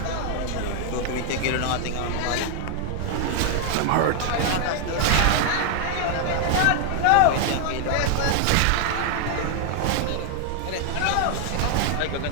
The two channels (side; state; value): both; different; correlation 0.00